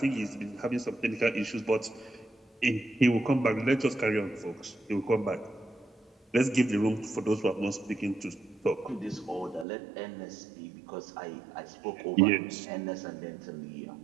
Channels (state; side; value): drops out; left; at 9.7 s